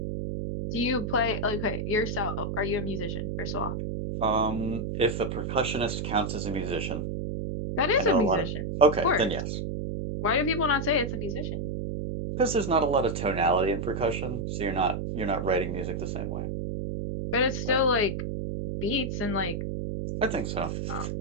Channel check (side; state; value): right; noise; hum, 3 dB below the sound